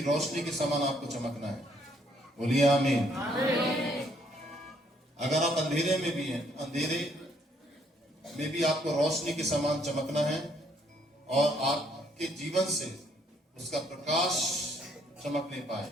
रोशनी के समान आपको चमकना है। बोलिए आमीन। अगर आप अंधेरे में भी हैं, अंधेरे में भी आपको रोशनी के समान चमकना है, और आपके जीवन से उसका प्रकाश चमकने पाए,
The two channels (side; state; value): both; normal; correlation 0.68